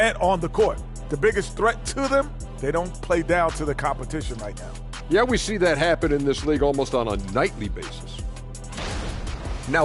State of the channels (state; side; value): identical; both; correlation 1.00